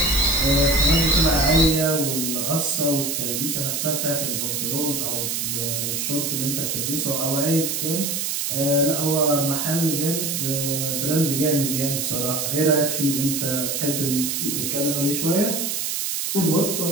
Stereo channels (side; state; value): right; noise; hiss, 1 dB below the sound